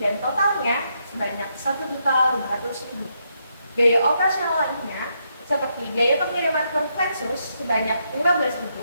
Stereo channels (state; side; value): inverted; both; correlation -0.79